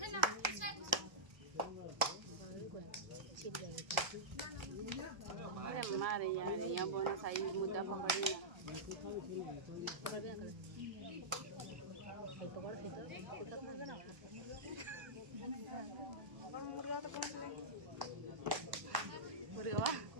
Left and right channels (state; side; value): late; left; 1.3 ms